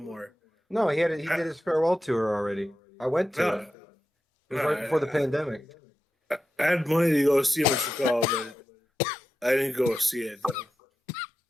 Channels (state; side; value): normal; both; correlation 0.90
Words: more. No, he did his farewell tour already. I went to it. It was right before the pandemic. I had money to go see him in Chicago, but I didn't go see it. Though.